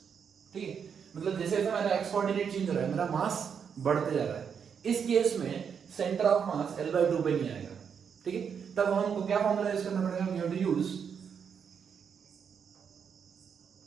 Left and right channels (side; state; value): left; quieter; 7.1 dB